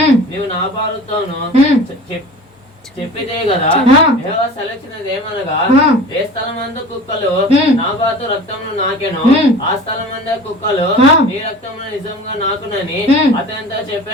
నీవు నాబాలుతోను చెప్పితే కదా. యెహోవా సెలవిచ్చినదేమనగా, ఏ స్థలమందు కుక్కలు నాబాతు రక్తమును నాకెను, ఆ స్థలమందు కుక్కలు నీ రక్తమును నిజంగా నాకునని అతనితో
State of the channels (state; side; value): normal; both; correlation 0.39